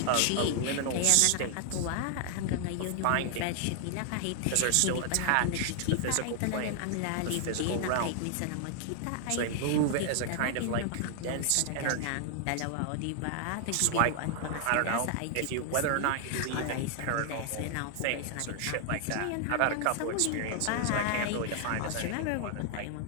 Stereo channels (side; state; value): both; different; correlation 0.00